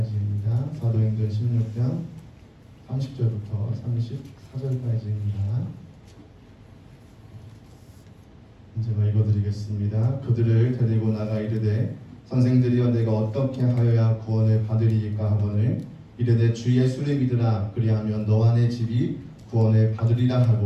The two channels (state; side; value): identical; both; correlation 1.00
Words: 사도행전 16장 30절부터 34절까지입니다. 제가 읽어드리겠습니다. 그들을 데리고 나가 이르되 선생들이여 내가 어떻게 하여야 구원을 받으리이까 하거늘 이르되 주 예수를 믿으라 그리하면 너와 내 집이 구원을 받으리라